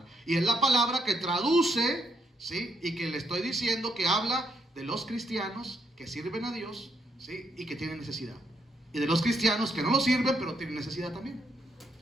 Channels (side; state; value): both; normal; correlation 0.75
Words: Y es la palabra que traduce, ¿sí? Y que le estoy diciendo que habla de los cristianos que sirven a Dios, ¿sí? Y que tienen necesidad. Y de los cristianos que no lo sirven, pero tienen necesidad también.